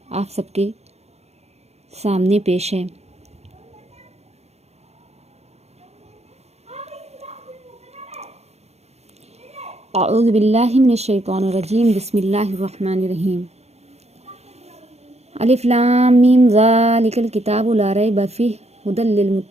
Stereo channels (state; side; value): late; left; 0.31 ms